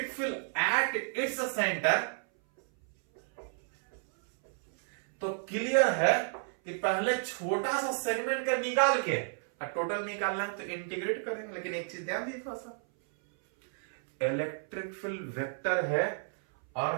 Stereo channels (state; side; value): silent; left; 57 dB below the other